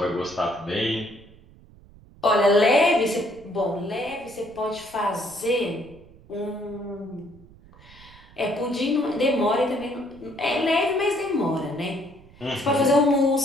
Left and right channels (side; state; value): right; noise; rumble, 24 dB below the sound